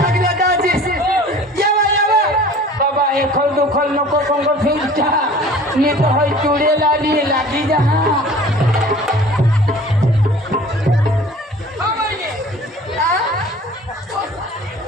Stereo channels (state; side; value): normal; both; correlation 0.46